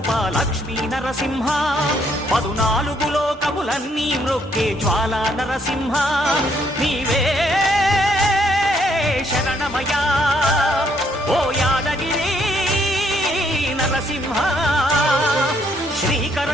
లక్ష్మీ నరసింహ 14 లోకములన్నీ మ్రొక్కే జ్వాలా నరసింహ నీవే శరణమయా ఓ యాదగిరి నరసింహ శ్రీకర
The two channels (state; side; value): normal; both; correlation 0.70